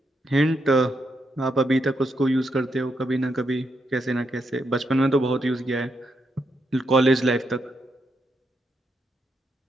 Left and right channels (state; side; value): normal; both; correlation 0.81